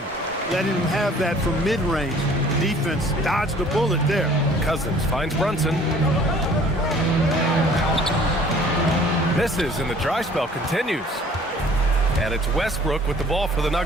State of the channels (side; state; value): both; normal; correlation 0.53